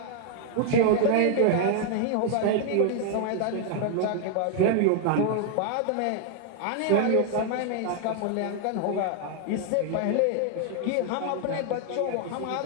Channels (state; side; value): different; both; correlation 0.00